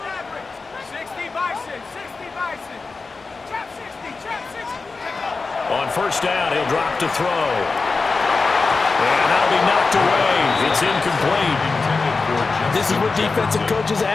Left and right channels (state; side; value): quieter; right; 4.1 dB